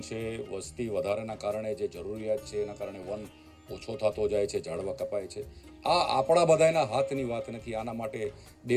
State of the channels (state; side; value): identical; both; correlation 1.00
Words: છે, વસ્તી વધારાના કારણે જે જરૂરિયાત છે એના કારણે વન ઓછો થતો જાય છે, ઝાડવા કપાય છે. આ આપણા બધાના હાથની વાત નથી. આના માટે